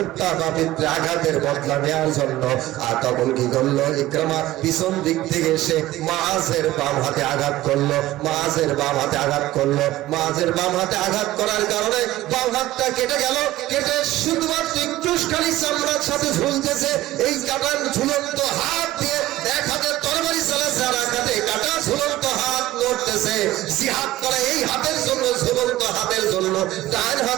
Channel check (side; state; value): left; quieter; 16.0 dB